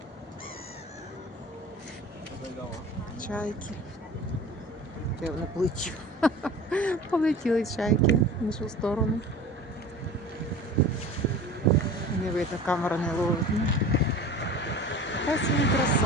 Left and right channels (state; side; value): normal; both; correlation 0.38